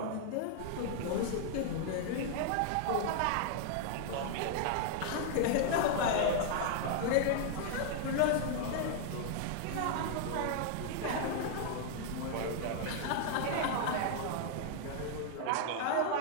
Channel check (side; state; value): both; different; correlation 0.00